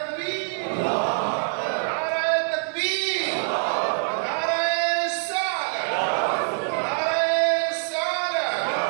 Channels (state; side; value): silent; left; digital silence